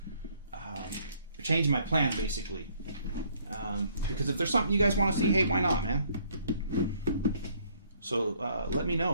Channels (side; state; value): both; inverted; correlation -0.63